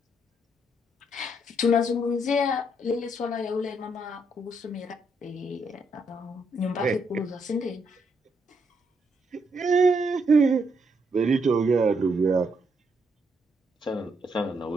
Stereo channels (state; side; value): normal; both; correlation 0.75